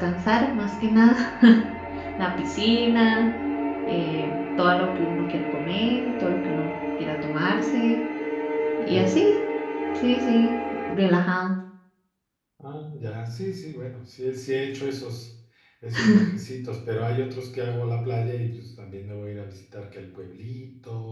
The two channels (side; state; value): both; identical; correlation 1.00